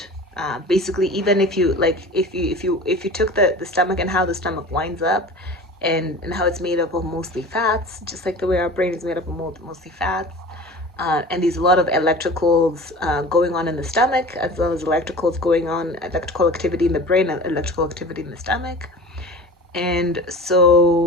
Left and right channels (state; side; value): normal; both; correlation 0.37